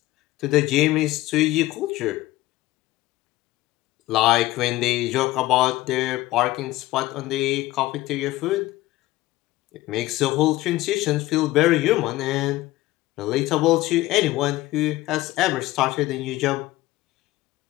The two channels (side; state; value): right; quieter; 17.6 dB